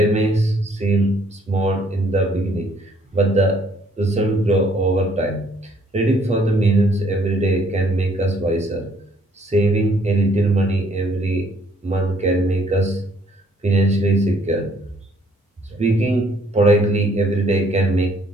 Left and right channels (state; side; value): normal; both; correlation 0.64